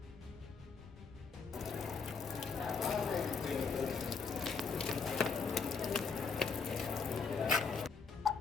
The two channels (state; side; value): quieter; right; 5.2 dB